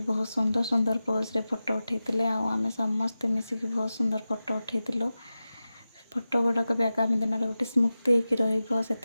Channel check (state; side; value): inverted; both; correlation -0.94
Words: बहुत सुंदर सुंदर पोज रे फोटो उठेतिले आ आमे समस्ते मिसिकी बहुत सुंदर फोटो उठेतिलु। फोटो गुडा भी आगामी दिन रे गोटे स्मृति हेकि रहिबो